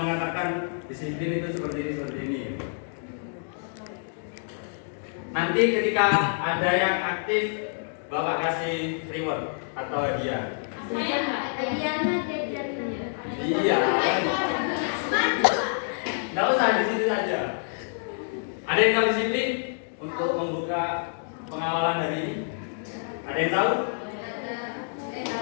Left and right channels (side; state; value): right; silent; digital silence